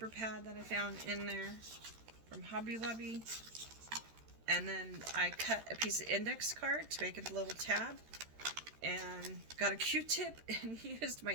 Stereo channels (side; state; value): left; late; 13 ms